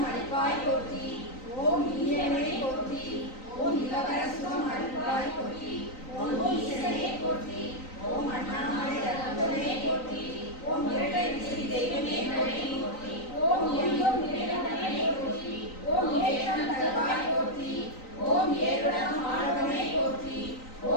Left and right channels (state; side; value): late; right; 3.9 ms